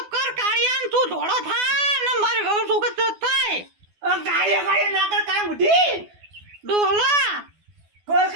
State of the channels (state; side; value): late; left; 12 ms